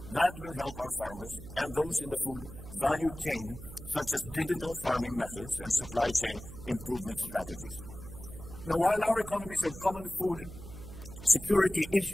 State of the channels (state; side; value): noise; right; hum, 13 dB below the sound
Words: that will help our farmers and those in the food value chain, such as digital farming methods and supply chain improvement strategies. Now, while our economies have common food security